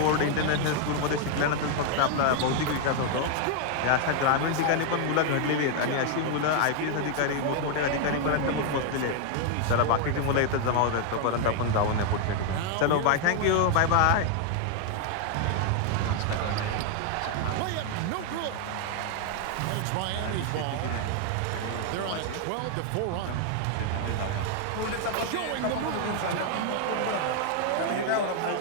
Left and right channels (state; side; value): different; both; correlation 0.00